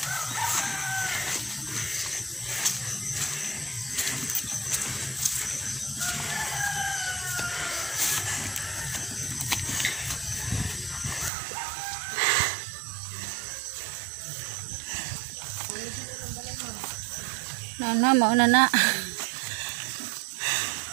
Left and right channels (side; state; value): left; drops out; at 11.3 s